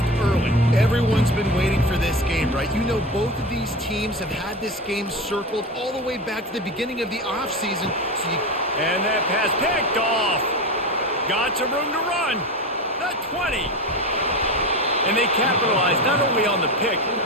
early. Everyone's been waiting for this game, right? You know, both of these teams have had this game circled all the way back to the beginning of the offseason. And that pass picked off. Got some room to run. The 20. And they capitalized not only on the pick,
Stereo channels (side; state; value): both; normal; correlation 0.25